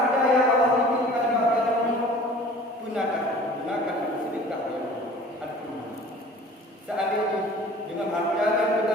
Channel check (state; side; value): normal; both; correlation 0.46